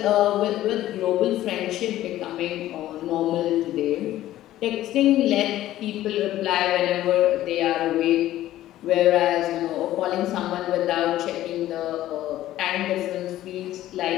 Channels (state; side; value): quieter; right; 14.1 dB